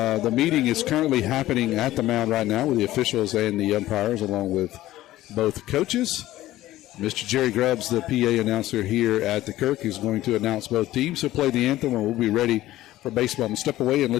meeting is currently happening at the mound right now with the officials and the umpires, along with both coaches. Mr. Jerry Grubbs, the PA announcer here at the Kirk, is going to announce both teams. He'll play the anthem, and we'll be ready for baseball. I'm going to step away and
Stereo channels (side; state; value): right; quieter; 15.4 dB